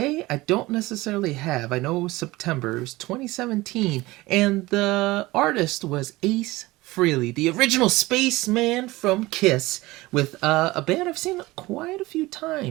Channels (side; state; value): left; quieter; 19.9 dB